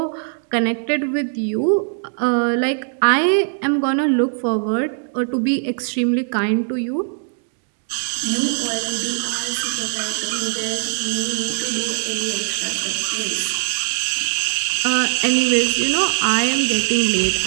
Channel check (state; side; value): silent; left; digital silence